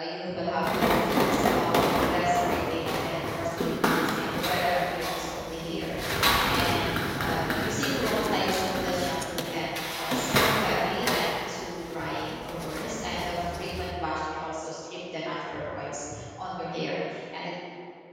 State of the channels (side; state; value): both; identical; correlation 1.00